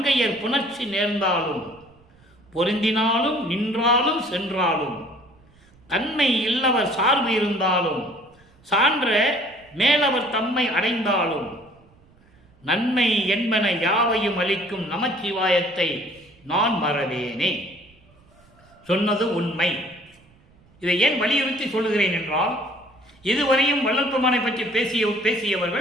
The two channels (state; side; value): noise; right; rumble, 30 dB below the sound